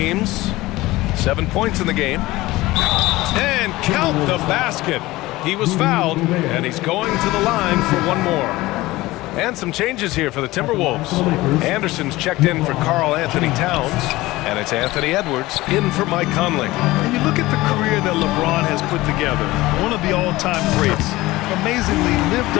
7 points in the game. And count the basket. He was fouled, and he's going to the line for 1 more. And some changes here for the Timberwolves. Anderson's checked in for Karl Anthony Towns, and it's Anthony Edwards in for Mike Conley. And you look at the career that LeBron has put together, one of the all-time greats. Amazingly lived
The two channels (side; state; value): right; quieter; 18.8 dB